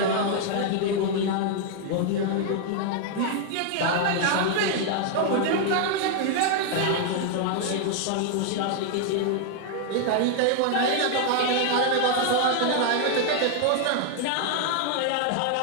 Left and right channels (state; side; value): different; both; correlation 0.00